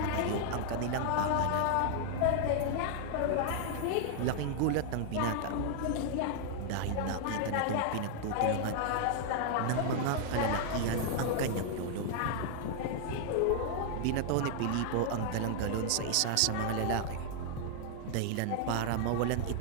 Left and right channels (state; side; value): different; both; correlation 0.00